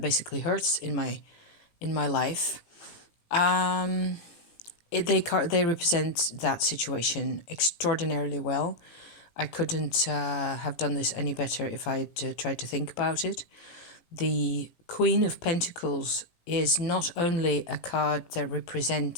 basically hurts in my life. They represent that situation extraordinarily well. I couldn't have done this any better if I had tried to think about it. The Queen of Pentacles is not only a card that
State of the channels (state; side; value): late; right; 18 ms